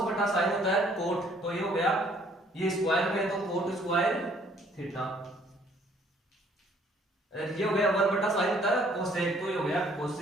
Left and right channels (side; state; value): both; normal; correlation 0.61